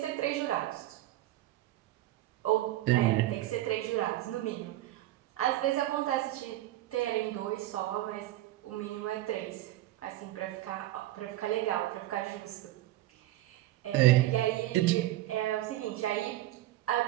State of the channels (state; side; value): quieter; left; 15.4 dB